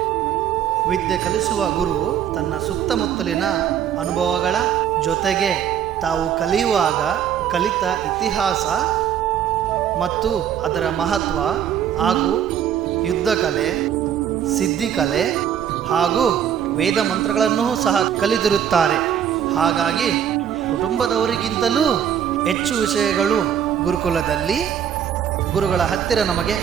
ವಿದ್ಯೆ ಕಲಿಸುವ ಗುರು ತನ್ನ ಸುತ್ತಮುತ್ತಲಿನ ಅನುಭವಗಳ ಜೊತೆಗೆ ತಾವು ಕಲಿಯುವಾಗ ಕಲಿತ ಇತಿಹಾಸ ಮತ್ತು ಅದರ ಮಹತ್ವ ಹಾಗೂ ಯುದ್ಧ ಕಲೆ, ಸಿದ್ಧಿಕಲೆ ಹಾಗೂ ವೇದ ಮಂತ್ರಗಳನ್ನೂ ಸಹ ಕಲಿತಿರುತ್ತಾರೆ. ಹಾಗಾಗಿ ಕುಟುಂಬದವರಿಗಿಂತಲೂ ಹೆಚ್ಚು ವಿಷಯಗಳು ಗುರುಕುಲದಲ್ಲಿ ಗುರುಗಳ ಹತ್ತಿರ ನಮಗೆ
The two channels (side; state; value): left; quieter; 9.3 dB